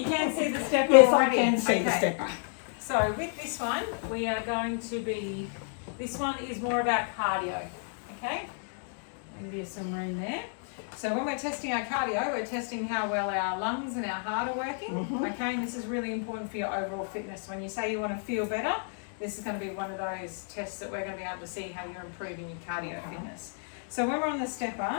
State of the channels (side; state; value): right; silent; 57 dB below the other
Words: can see the stepper Yes, already. I can see the stepper. So with this one, we are going to be, this one is more about cardio, okay? Give you some room there. So when we're testing our cardio, we're testing how well our lungs and our heart are working, okay? And this is really important for your overall fitness. When you say you want to feel better, this is going to be one of those tests that we're going to be able to see how you're improving your cardio fitness. So when we're on the